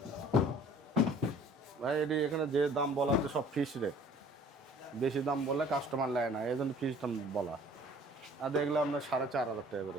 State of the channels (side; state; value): both; normal; correlation 0.52